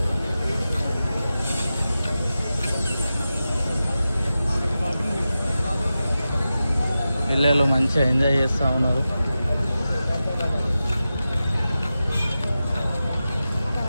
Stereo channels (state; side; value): inverted; both; correlation -0.93